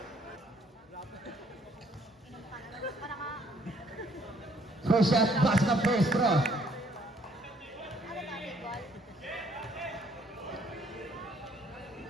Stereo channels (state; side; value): normal; both; correlation 0.64